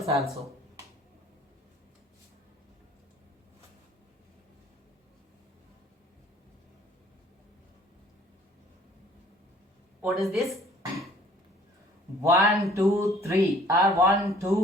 also. What is this? 1, 2, 3 or 1,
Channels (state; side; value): normal; both; correlation 0.55